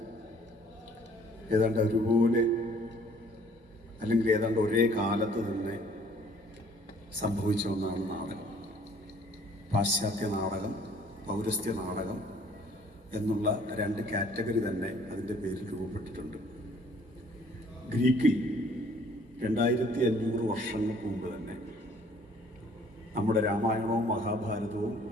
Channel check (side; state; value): both; normal; correlation 0.58